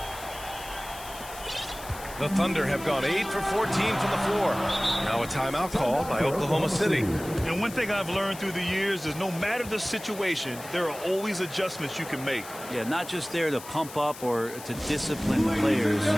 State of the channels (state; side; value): noise; left; hiss, 15 dB below the sound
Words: The Thunder have gone 8 for 14 from the floor. Now a timeout call by Oklahoma City. And one thing I've learned through the years is no matter the situation, there are always adjustments you can make. Yeah, not just there to pump up or to discipline the players.